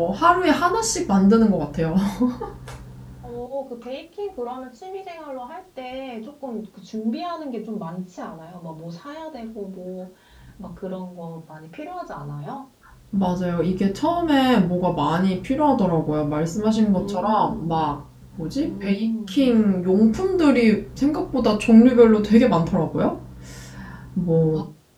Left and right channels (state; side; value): identical; both; correlation 1.00